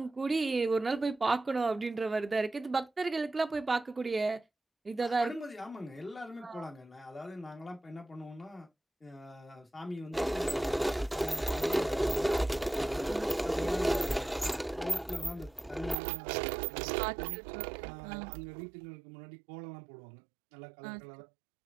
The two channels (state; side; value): drops out; left; at 16.0 s